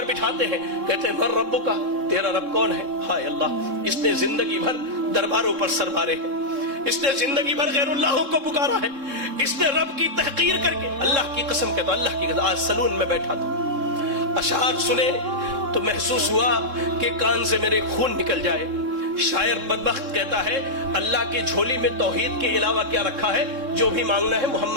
بٹھاتے ہیں، کہتے ہیں من ربک، تیرا رب کون ہے؟ ہائے اللہ، اس نے زندگی بھر درباروں پر سر مارے ہیں، اس نے زندگی بھر غیر اللہوں کو پکارا ہے، اس نے رب کی تحقیر کر کے، اللہ کی قسم کہتا ہوں، اللہ کی قسم، آج سلون میں بیٹھا تھا، اشعار سنے تو محسوس ہوا کہ کان سے میرے خون نکل جائے۔ شاعر بدبخت کہتا ہے اللہ کی جھولی میں توحید کے علاوہ کیا رکھا ہے؟ جو بھی مانگنا ہے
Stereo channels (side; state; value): left; late; 3.7 ms